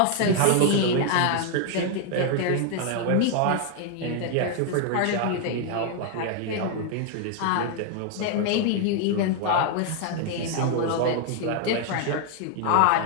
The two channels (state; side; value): different; both; correlation 0.00